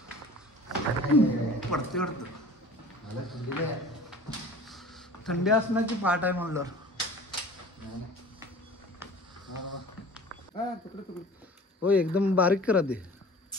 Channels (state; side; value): normal; both; correlation 0.42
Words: पडते वाटतं. थंडी असण्याची पाठ आहे म्हणलं. हो, एकदम बारीक करा दे.